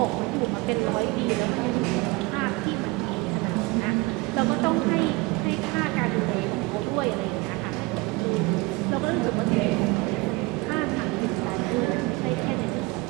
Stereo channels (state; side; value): quieter; left; 23.8 dB